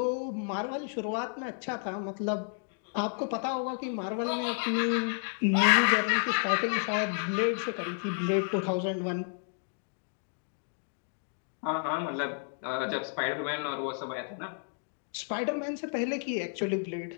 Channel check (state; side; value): silent; right; 57 dB below the other